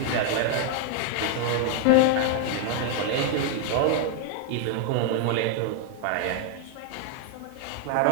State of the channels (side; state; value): both; different; correlation 0.00